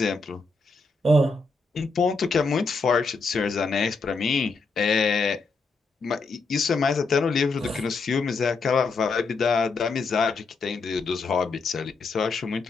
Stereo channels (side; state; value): right; quieter; 4.0 dB